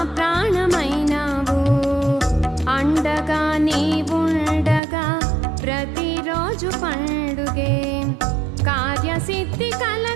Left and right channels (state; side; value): drops out; left; at 4.8 s